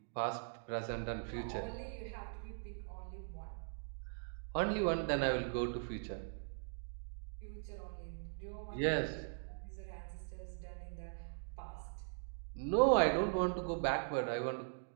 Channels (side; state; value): left; silent; digital silence